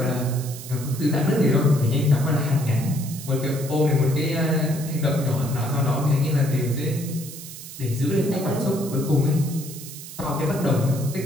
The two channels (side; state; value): right; noise; hiss, 13 dB below the sound